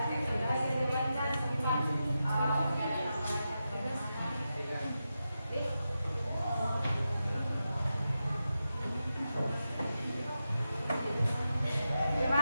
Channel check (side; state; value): both; inverted; correlation -0.90